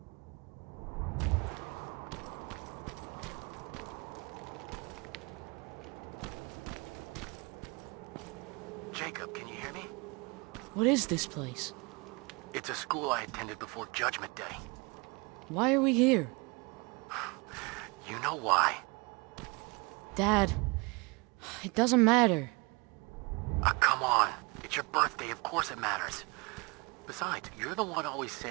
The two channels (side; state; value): left; quieter; 28.1 dB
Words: Jacob, can you hear me? What is this place? It's a school I attended before Judgment Day. Why are we here? You know why. Dad, it doesn't matter. Come on. It's your birthday, of course it matters. Besides, you're the one always